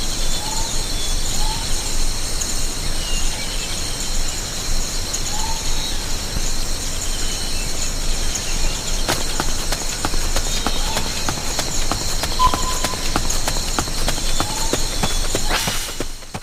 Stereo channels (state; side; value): identical; both; correlation 1.00